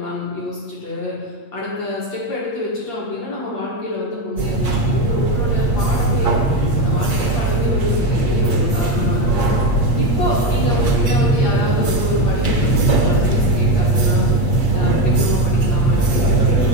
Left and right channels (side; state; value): right; late; 8.5 ms